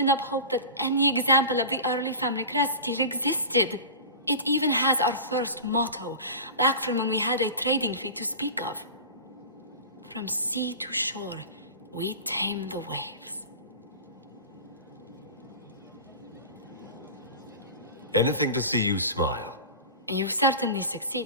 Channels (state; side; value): inverted; both; correlation -0.32